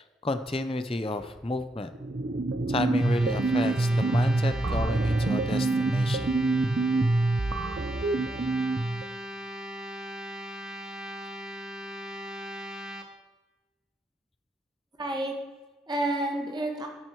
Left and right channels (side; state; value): both; normal; correlation 0.80